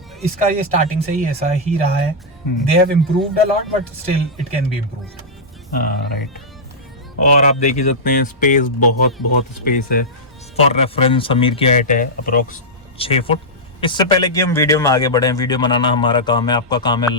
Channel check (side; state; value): both; normal; correlation -0.10